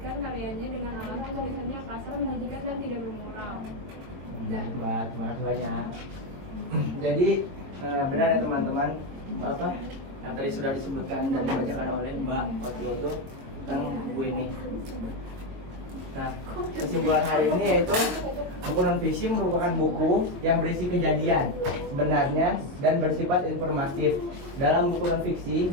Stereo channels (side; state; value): left; late; 22 ms